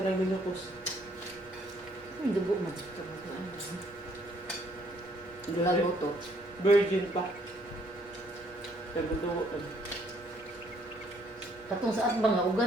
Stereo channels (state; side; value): normal; both; correlation 0.66